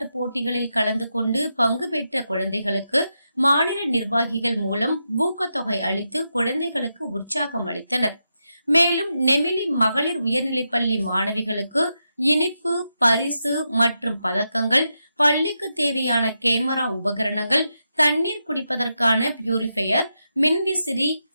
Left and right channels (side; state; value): both; inverted; correlation -0.86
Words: போட்டிகளில் கலந்து கொண்டு பங்கு பெற்ற குழந்தைகளுக்கு மாநில நிர்வாகிகள் மூலம் ஊக்கத்தொகை அளித்து குழந்தைகளுக்கு உற்சாகம் அளித்தனர். மேலும் நெமிலி மகளிர் உயர்நிலைப்பள்ளி மாணவிகளுக்கு இனிப்பு, பரிசு மற்றும் பதக்கங்கள், பள்ளிக்கு தேவையான கேமரா உபகரணங்கள், தண்ணீர் குடிப்பதற்கான பியூரிஃபையர், மின்விசிறி,